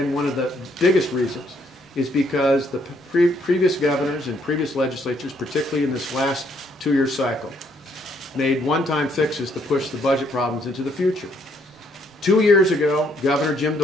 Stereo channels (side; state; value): both; normal; correlation 0.69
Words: one of the biggest reasons is because the previous governors and previous legislatures, particularly in this last two-year cycle, made one-time fixes to push the budget problems into the future. 2 years ago, Governor Jim